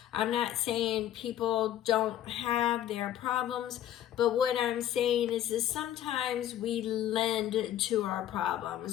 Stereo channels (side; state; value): right; quieter; 11.6 dB